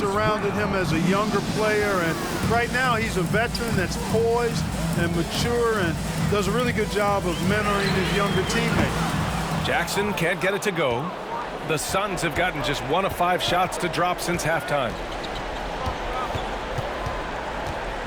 him as a younger player, and right now he's a veteran that's poised and mature and does a really good job of mentoring his younger teammates. Jackson can't get it to go. The Suns have gotten just 1 of 5 shots to drop since halftime.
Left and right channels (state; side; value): identical; both; correlation 1.00